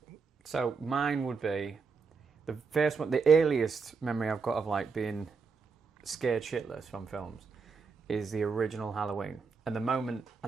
So mine would be the first one. The earliest memory I've got of like being scared shitless from films is the original Halloween. And the moment,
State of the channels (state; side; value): quieter; left; 5.0 dB